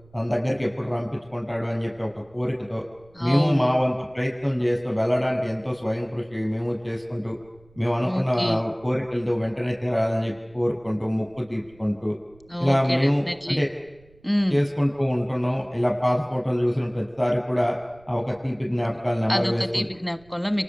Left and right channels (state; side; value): noise; right; rumble, 28 dB below the sound